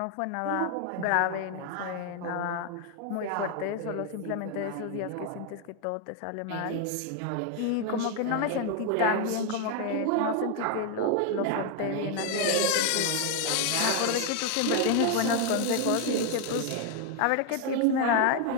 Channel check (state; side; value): different; both; correlation 0.01